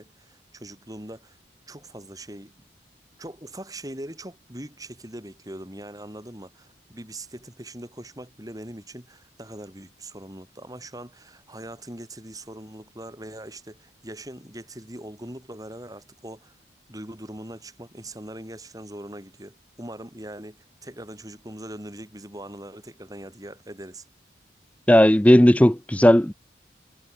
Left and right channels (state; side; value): normal; both; correlation 0.95